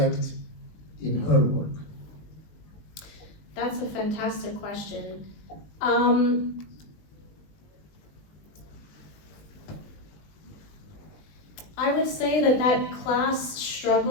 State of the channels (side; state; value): right; late; 19 ms